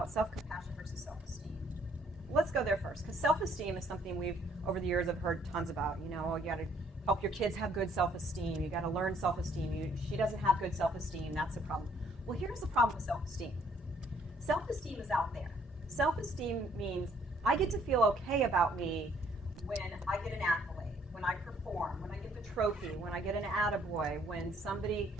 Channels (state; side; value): normal; both; correlation 0.65